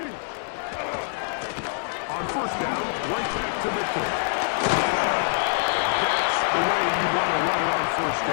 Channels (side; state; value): right; silent; 62 dB below the other